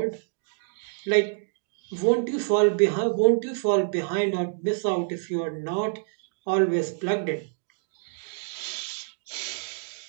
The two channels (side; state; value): left; silent; digital silence